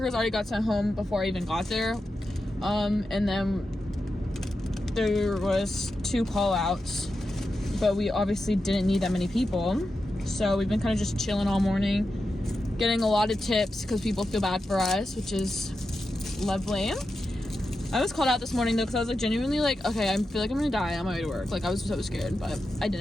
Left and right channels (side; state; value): both; normal; correlation 0.89